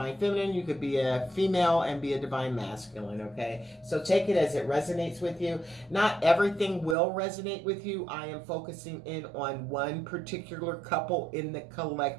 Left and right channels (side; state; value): left; drops out; at 7.0 s